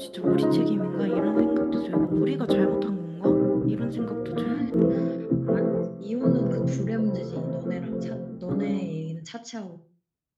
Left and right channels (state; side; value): identical; both; correlation 1.00